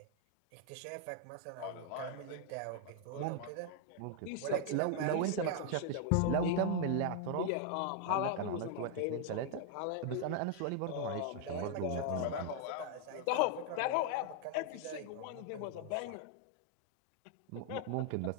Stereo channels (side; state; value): both; different; correlation 0.00